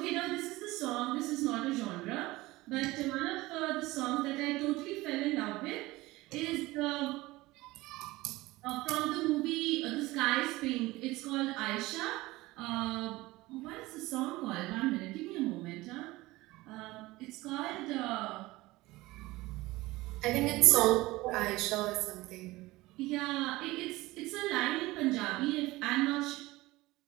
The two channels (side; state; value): left; quieter; 19.6 dB